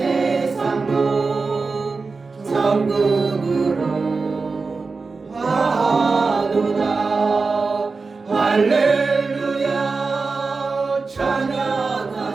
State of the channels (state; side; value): quieter; left; 4.2 dB